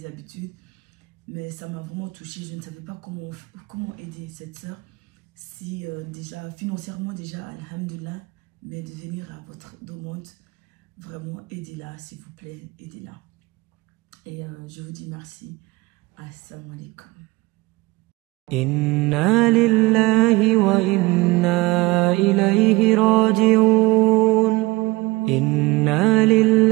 habitudes, mais ça m'a vraiment touchée, je ne savais pas comment aider cette sœur, si déjà financièrement déjà, alhamdulillah, mais de venir à votre demande, vraiment aidez-la, s'il vous plaît, aidez-la. Et je vous dis merci. Assalamu alaikum. إنا لله وإنا إليه راجعون إنا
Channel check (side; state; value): left; quieter; 22.0 dB